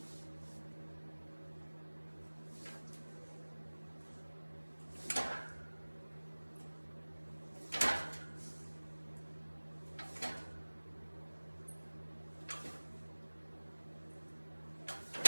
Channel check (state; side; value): inverted; both; correlation -1.00